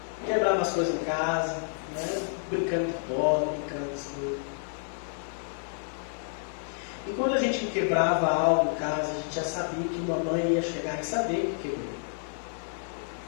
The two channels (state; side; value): silent; right; digital silence